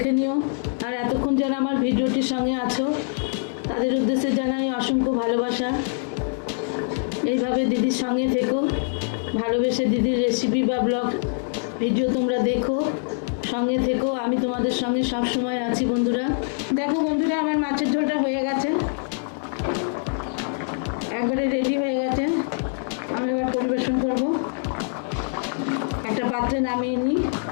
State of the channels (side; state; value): right; silent; 60 dB below the other